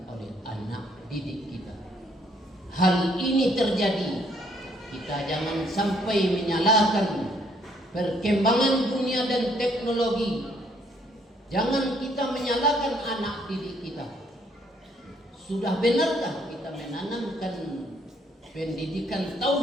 oleh anak didik kita. Hal ini terjadi, kita jangan sampai menyalahkan perkembangan dunia dan teknologi. Jangan kita menyalahkan anak didik kita. Sudah benarkah kita menanamkan pendidikan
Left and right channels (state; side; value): normal; both; correlation 0.67